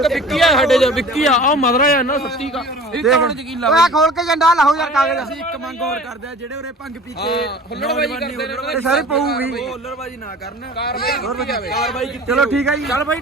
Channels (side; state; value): both; normal; correlation 0.43